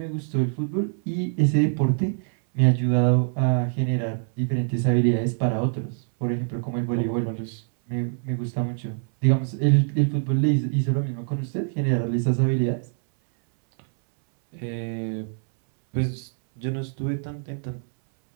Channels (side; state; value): left; silent; 62 dB below the other